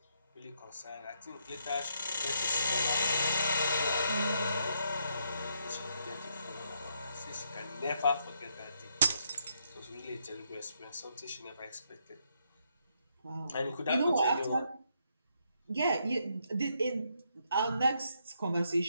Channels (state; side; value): inverted; both; correlation -0.76